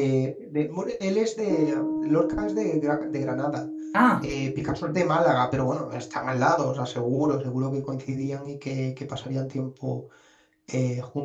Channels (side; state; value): both; identical; correlation 1.00